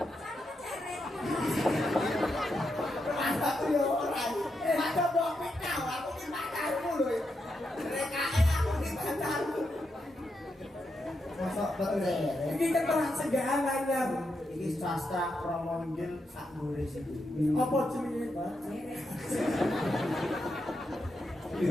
Kan keceret. Aku yo ora. Ada mbok pikau, aku ki pacarmu lho. Rekae aku ki pacarmu. Masuk betul ya. ini keterangan segalanya Iki sastra Promondil sak nulis iki. apa jenenge Pak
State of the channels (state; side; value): normal; both; correlation 0.84